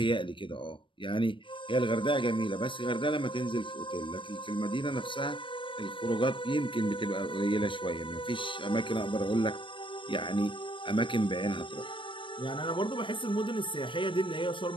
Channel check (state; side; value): late; right; 0.24 ms